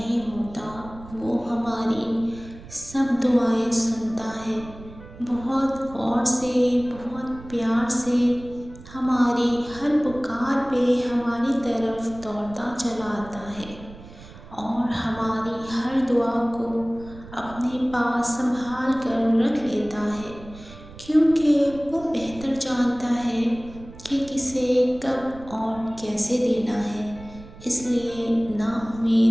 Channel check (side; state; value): right; noise; rumble, 17 dB below the sound